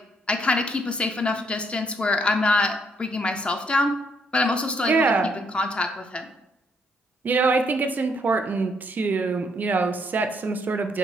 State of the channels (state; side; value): normal; both; correlation 0.71